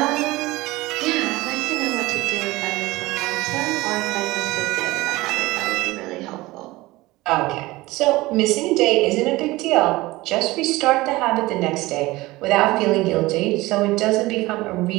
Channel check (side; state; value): left; quieter; 19.9 dB